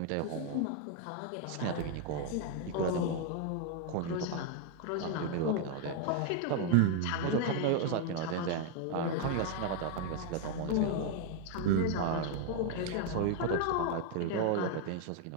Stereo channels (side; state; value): both; different; correlation 0.00